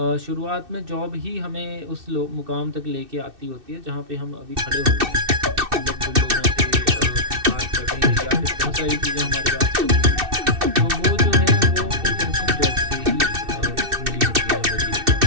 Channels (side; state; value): left; late; 2.6 ms